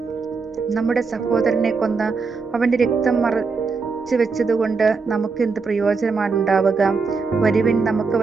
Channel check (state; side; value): quieter; left; 4.6 dB